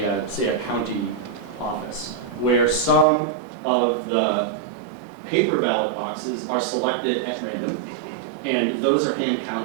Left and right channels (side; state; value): left; drops out; at 3.1 s